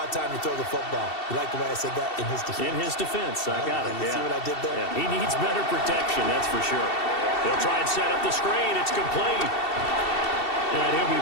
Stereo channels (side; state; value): right; late; 2.7 ms